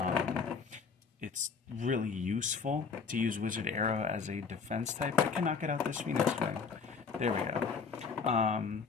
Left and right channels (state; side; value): quieter; right; 5.5 dB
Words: It's really useful to use Wizard Aero as a defense type. I can knock it out this Phoenix Wing. There we go.